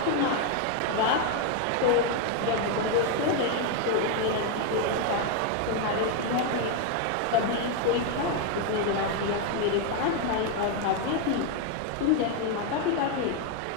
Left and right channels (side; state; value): both; different; correlation 0.01